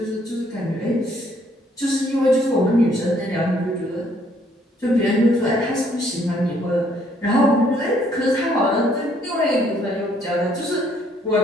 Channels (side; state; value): both; normal; correlation 0.66